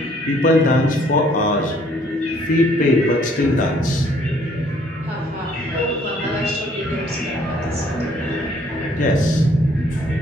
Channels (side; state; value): both; normal; correlation 0.62